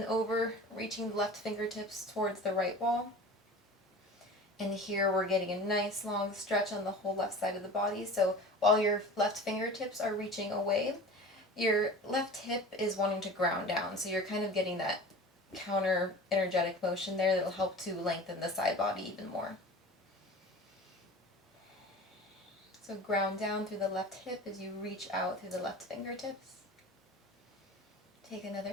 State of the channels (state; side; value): normal; both; correlation 0.38